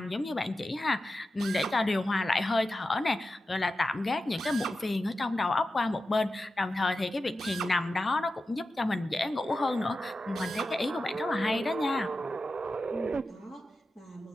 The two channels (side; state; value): both; normal; correlation 0.92